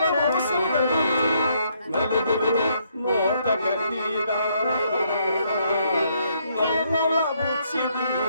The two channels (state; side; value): inverted; both; correlation -0.72